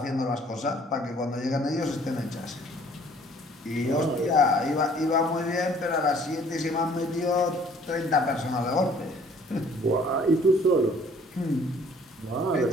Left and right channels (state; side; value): normal; both; correlation 0.56